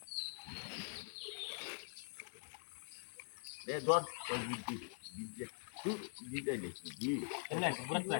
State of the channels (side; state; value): right; silent; digital silence